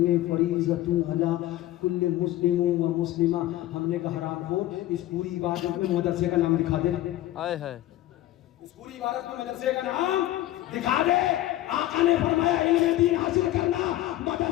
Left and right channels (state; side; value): quieter; right; 14.9 dB